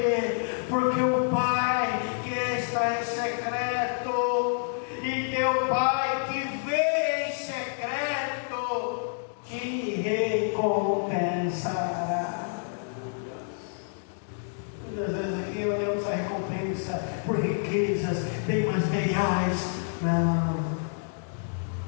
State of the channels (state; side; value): silent; right; digital silence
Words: Porque o Pai que está em secreto e teu Pai que vê em secreto te recompensará. Muitas vezes aqui olhamos a recompensa por riquezas, bem materiais. Não,